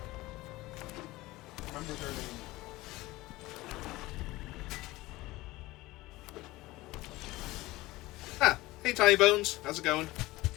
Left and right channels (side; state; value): right; quieter; 19.2 dB